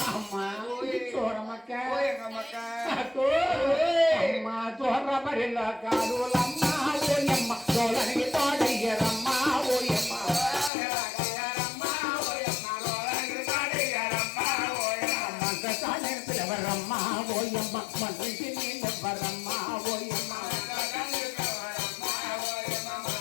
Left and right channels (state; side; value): drops out; right; at 10.7 s